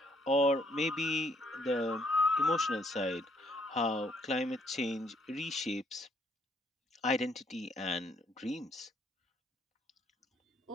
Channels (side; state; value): both; normal; correlation 0.68